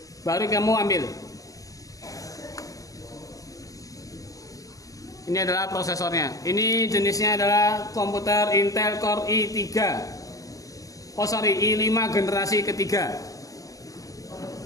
baru kamu ambil. Ini adalah prosesornya. Ini jenisnya adalah komputer Intel Core i5 generasi ketiga.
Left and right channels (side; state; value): right; late; 0.17 ms